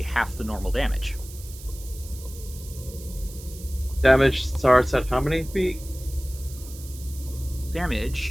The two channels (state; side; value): noise; right; hiss, 17 dB below the sound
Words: half the normal damage. Damage starts at how many feet?